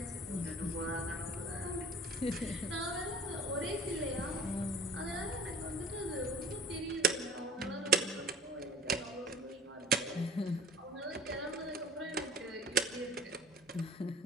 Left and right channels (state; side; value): normal; both; correlation 0.44